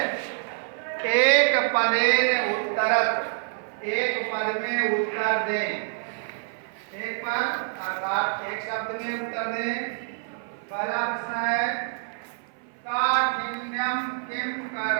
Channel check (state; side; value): silent; left; 55 dB below the other